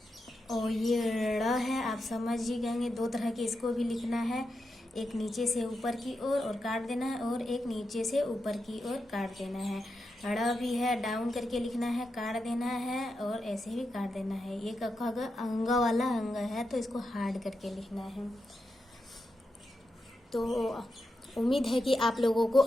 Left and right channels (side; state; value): both; normal; correlation 0.87